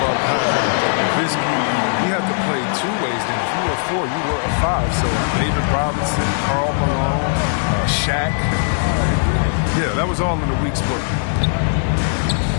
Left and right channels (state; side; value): silent; right; digital silence